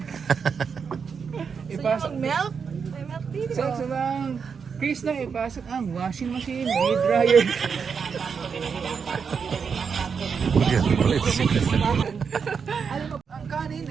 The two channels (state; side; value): quieter; left; 6.1 dB